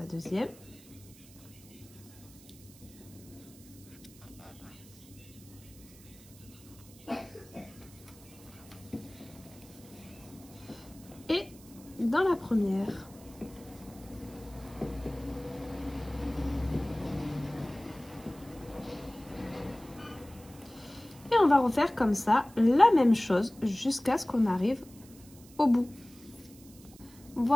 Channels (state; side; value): noise; right; hiss, 22 dB below the sound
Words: deuxième dans la première. Et on va refaire comme ça la même chose jusqu'à ce qu'on arrive au bout.